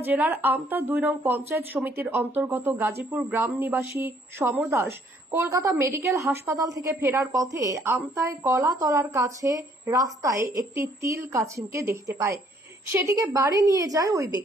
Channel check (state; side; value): normal; both; correlation 0.64